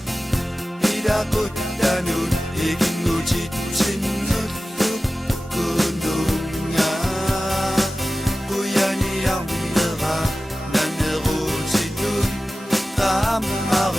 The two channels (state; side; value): normal; both; correlation 0.95